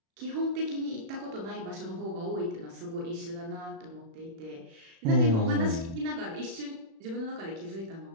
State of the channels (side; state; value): left; late; 36 ms